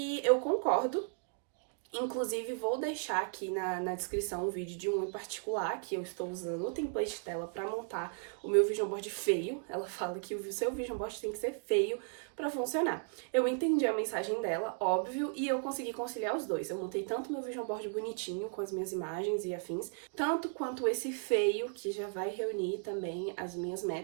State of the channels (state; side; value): silent; left; 54 dB below the other